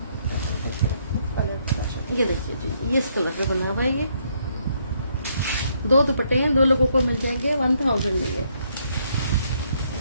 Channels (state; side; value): inverted; both; correlation -0.72